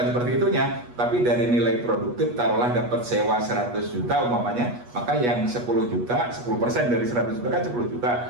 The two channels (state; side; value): late; left; 8.3 ms